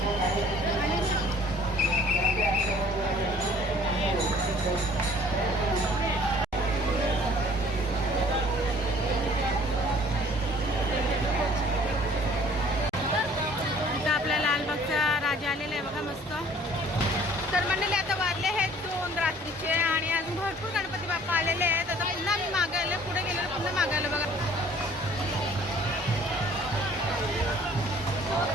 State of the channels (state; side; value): normal; both; correlation 0.54